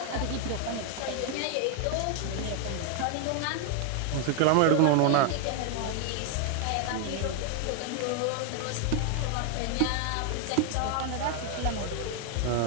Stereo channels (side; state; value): both; different; correlation 0.00